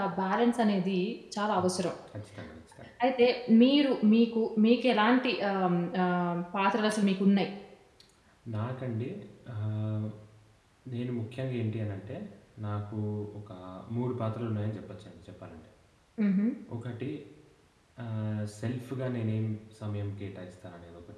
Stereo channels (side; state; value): both; identical; correlation 1.00